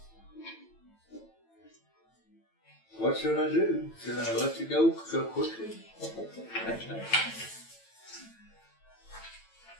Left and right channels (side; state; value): right; late; 9.0 ms